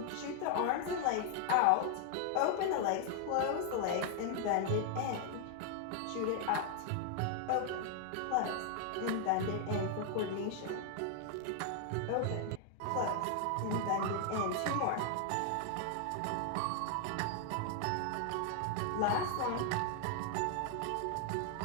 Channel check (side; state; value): both; different; correlation 0.00